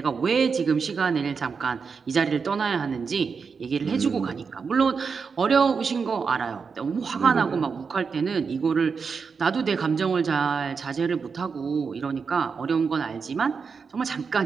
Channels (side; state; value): left; quieter; 5.5 dB